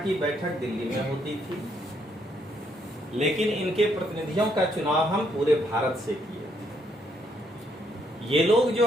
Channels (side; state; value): both; normal; correlation 0.73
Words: बैठक दिल्ली में होती थी, लेकिन इनके प्रतिनिधियों का चुनाव हम पूरे भारत से किए। ये लोग